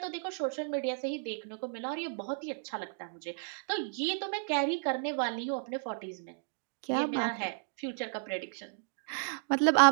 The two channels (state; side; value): silent; left; digital silence